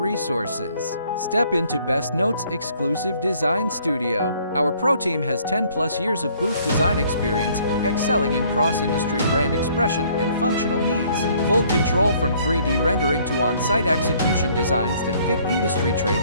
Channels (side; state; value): both; inverted; correlation -0.61